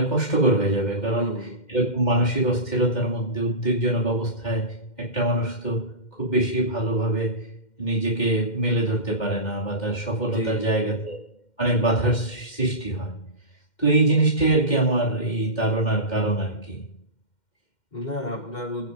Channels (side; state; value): right; late; 2.1 ms